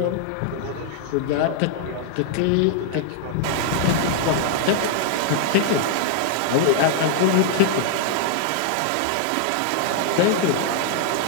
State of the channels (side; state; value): both; different; correlation -0.01